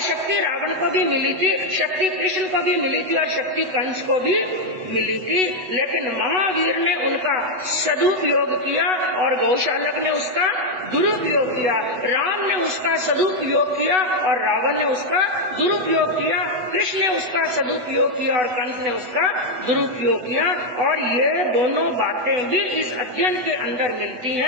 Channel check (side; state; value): left; late; 8.0 ms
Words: रावण को भी मिली थी, शक्ति कृष्ण को भी मिली थी और शक्ति कंस को भी मिली थी। लेकिन महावीर ने उनका सदुपयोग किया और गौशालक ने उसका दुरुपयोग किया, राम ने उसका सदुपयोग किया और रावण ने उसका दुरुपयोग किया, कृष्ण ने उसका सदुपयोग किया और कंस ने उसका दुरुपयोग किया। और ये दोनों बातें भी इस अध्ययन के अंदर मिलती